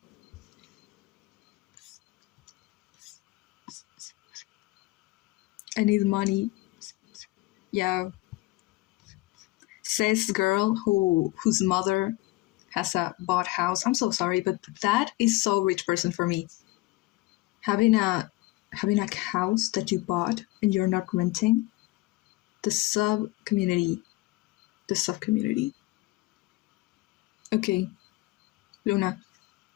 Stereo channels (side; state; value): right; quieter; 20.3 dB